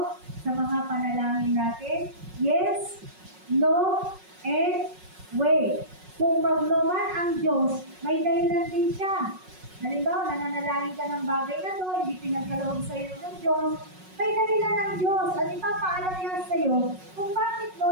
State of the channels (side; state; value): left; late; 5.4 ms